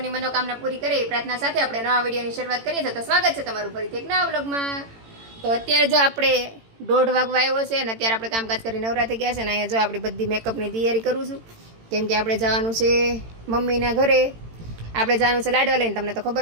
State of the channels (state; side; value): late; left; 18 ms